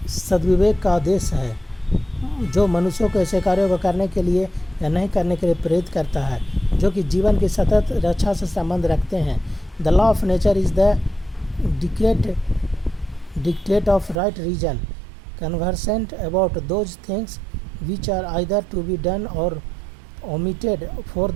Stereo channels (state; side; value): drops out; left; at 14.2 s